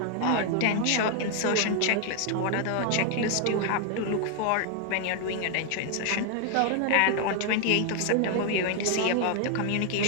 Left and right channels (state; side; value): different; both; correlation 0.00